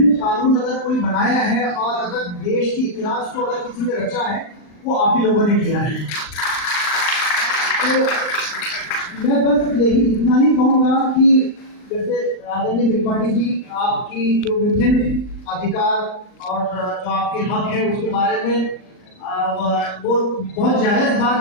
कानून अगर कोई बनाया है और अगर देश की इतिहास को अगर किसी ने रचा है वो आप ही लोगों ने किया है। तो मैं बस यही इतना ही कहूँगा कि जैसे आदरणीय त्रिपाठी जी आपकी जो विभिन्न अधिकार और जो आपके हक है उसके बारे में वो बहुत जायज़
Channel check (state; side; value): late; right; 39 ms